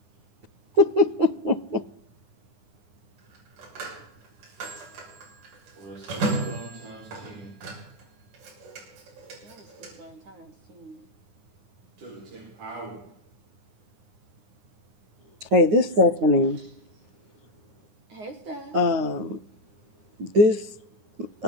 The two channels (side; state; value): left; late; 9.7 ms